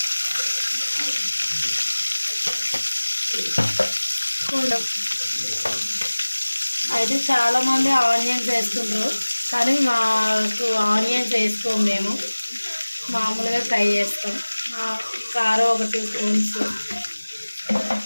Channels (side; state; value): both; inverted; correlation -1.00